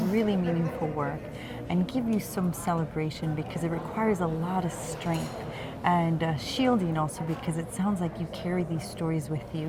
really meaningful work and give you some celebration because it requires a lot of strength and shielding also, because it sounds like you carry these stories with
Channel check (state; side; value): identical; both; correlation 1.00